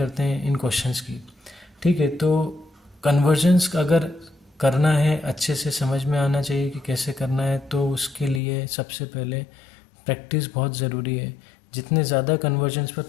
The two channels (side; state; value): right; drops out; at 8.4 s